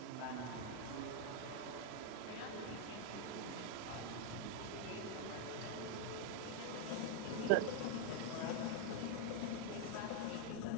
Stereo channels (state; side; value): different; both; correlation 0.01